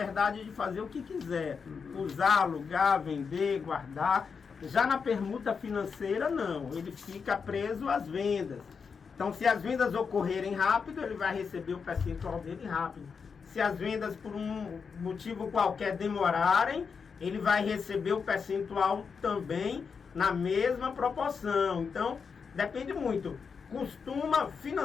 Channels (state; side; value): quieter; right; 5.8 dB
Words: de fazer o que quiser, usar, alugar, vender, guardar. Já na permuta financeira, não. Ele fica preso às vendas. Então, se as vendas ocorrerem rápido, ele vai receber o percentual dele rápido. Se as vendas, por um motivo qualquer, demorarem, ele vai receber o percentual também na mesma proporção. Então, depende muito.